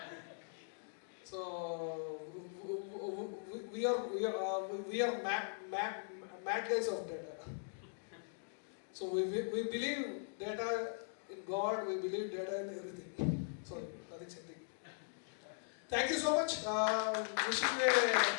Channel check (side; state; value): right; silent; digital silence